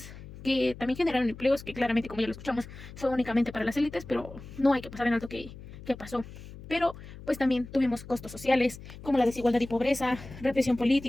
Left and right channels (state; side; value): noise; left; hum, 15 dB below the sound